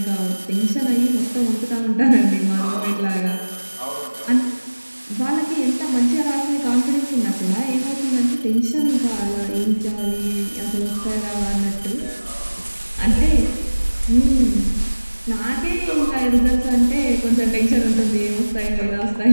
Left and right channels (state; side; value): inverted; both; correlation -1.00